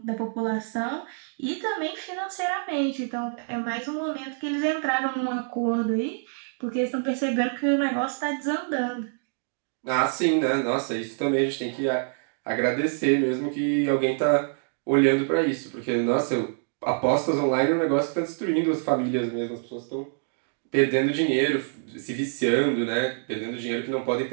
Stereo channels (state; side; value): silent; left; 61 dB below the other